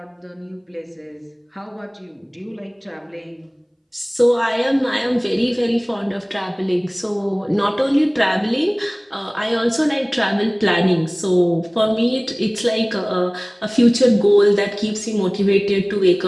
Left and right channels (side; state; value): both; identical; correlation 1.00